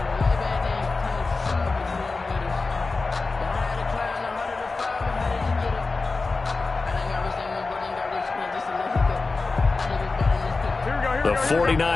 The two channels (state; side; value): quieter; right; 3.8 dB